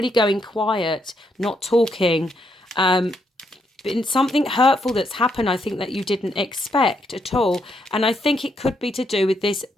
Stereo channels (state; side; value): normal; both; correlation 0.77